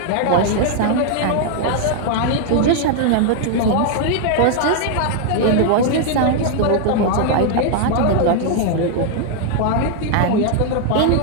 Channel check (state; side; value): different; both; correlation 0.00